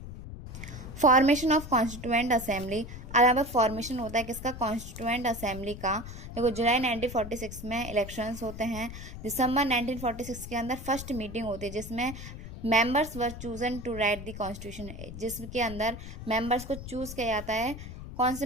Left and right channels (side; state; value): left; noise; rumble, 11 dB below the sound